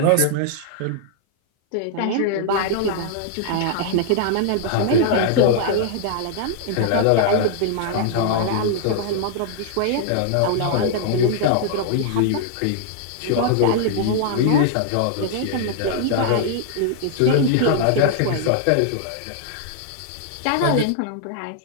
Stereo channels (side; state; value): both; different; correlation -0.01